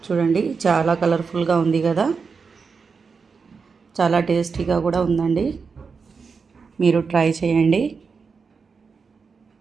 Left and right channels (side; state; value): left; quieter; 5.2 dB